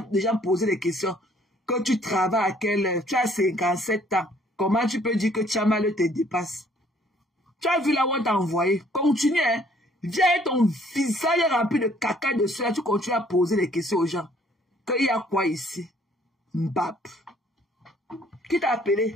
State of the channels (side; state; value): both; normal; correlation 0.61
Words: des gens poser des questions. Quand tu travailles à quelle heure? Tu as 57 ans. Comment tu peux dire que Tchamal te dépasse? Tu as vu là où on t'a envoyé? Continue, hein. Viens avec ton visage rempli de caca de cela. Tu continues à poser des questions aux gens. Qu'il y a quoi ici? Mbap. Qui t'a